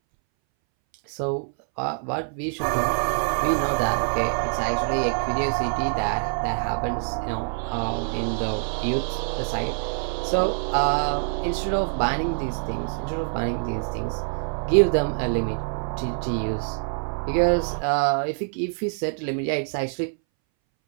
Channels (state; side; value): silent; left; 61 dB below the other